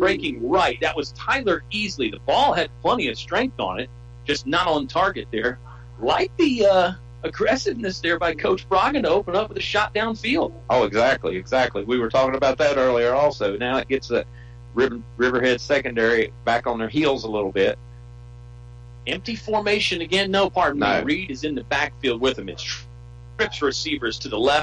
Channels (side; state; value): both; identical; correlation 1.00